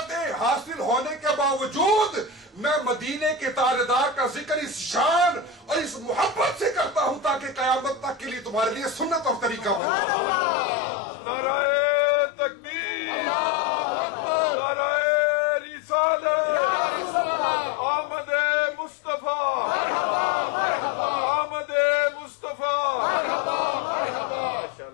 حاصل ہونے کے باوجود میں مدینے کے تاجدار کا ذکر اس شان اور اس محبت سے کرتا ہوں تاکہ قیامت تک کے لیے تمہارے لیے سنت اور طریقہ بن جائے۔ نعرہ تکبیر، نعرہ رسالت، آمد مصطفیٰ، آمد مصطفیٰ۔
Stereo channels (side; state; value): right; drops out; at 9.8 s